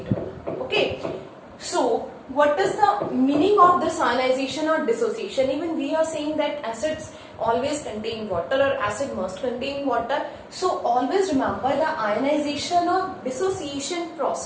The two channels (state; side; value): identical; both; correlation 1.00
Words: Okay, so what is the meaning of this ionization or dissociation? Even we are saying that acids always contain water or acid must contain water. So always remember the ionization or dissociation